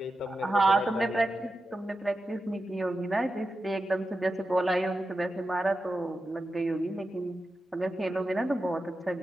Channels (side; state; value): both; normal; correlation 0.91